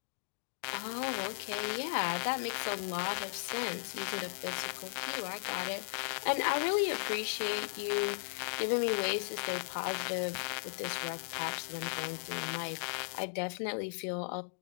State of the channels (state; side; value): silent; right; digital silence